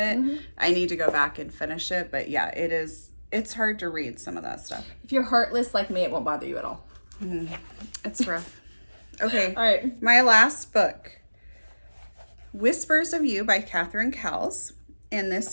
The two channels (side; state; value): both; inverted; correlation -1.00